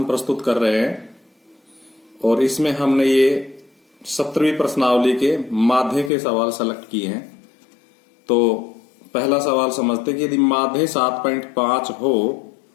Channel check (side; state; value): right; drops out; at 6.1 s